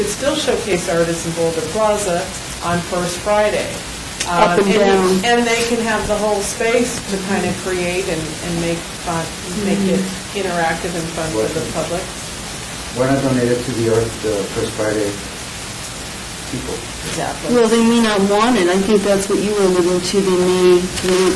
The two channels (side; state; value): both; identical; correlation 1.00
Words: still showcase artists in Boulder Plaza on First Friday. Up and down. And they can have the whole space to kind of create and make fun, make it interactive and fun for the public. Why not donate it to the First Friday people? Exactly. Well, they may not want it. I think that's what you were alluding to. They may